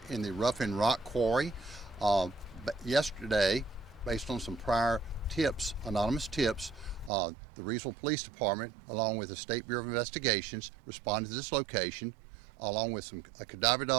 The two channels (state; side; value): drops out; left; at 7.1 s